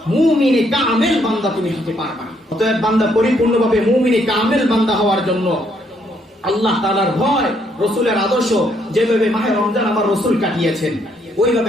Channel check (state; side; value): normal; both; correlation 0.71